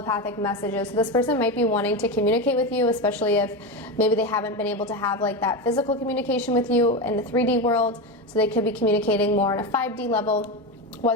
messages. So this person might be wanting to communicate with you, especially if maybe they haven't been able to have like that physical communication with you in the 3D world. So they could be communicating more on a 5D level,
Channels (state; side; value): normal; both; correlation 0.17